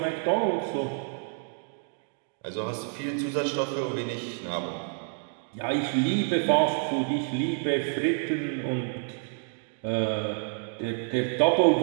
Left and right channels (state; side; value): silent; left; 58 dB below the other